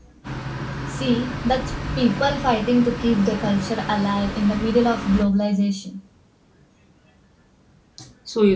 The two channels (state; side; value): identical; both; correlation 1.00